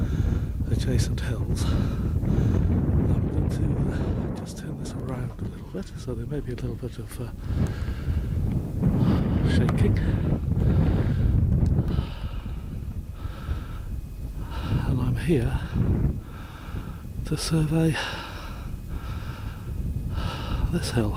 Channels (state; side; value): identical; both; correlation 1.00